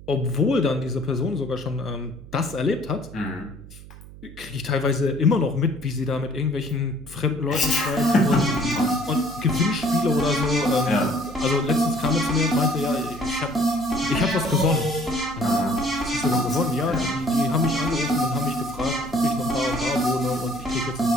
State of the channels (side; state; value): right; noise; hum, 17 dB below the sound